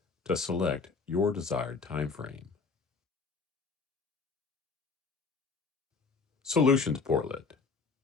to select your desired time frame. Solutions Portlet.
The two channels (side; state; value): right; quieter; 4.7 dB